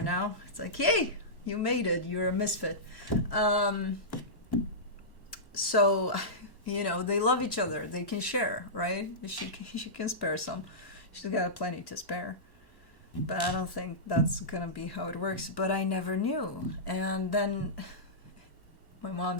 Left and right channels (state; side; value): late; right; 1.1 ms